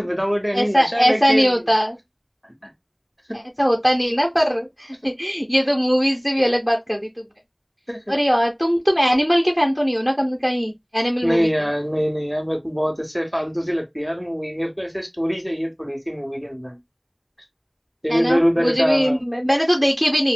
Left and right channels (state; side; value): identical; both; correlation 1.00